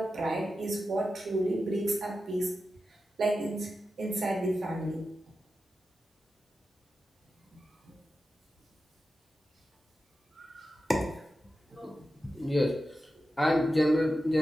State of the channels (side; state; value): both; normal; correlation 0.91